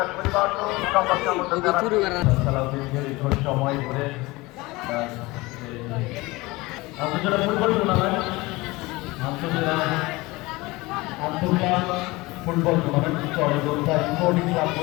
সময় ধরে আন্তর্জাতিক ফুটবল টুর্নামেন্ট ফুটবল টুর্নামেন্ট চরগোদ্ধা স্পোর্টিং ক্লাব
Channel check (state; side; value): quieter; right; 21.9 dB